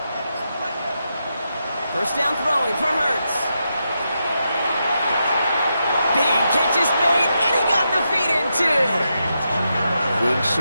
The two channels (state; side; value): inverted; both; correlation -0.85